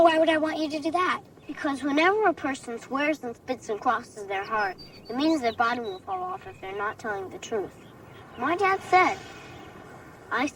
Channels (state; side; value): identical; both; correlation 1.00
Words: why would I want you to do that? Because whenever a person swears and spits and crosses their heart, it means their bottom will fall off if they're not telling the truth. My dad said, I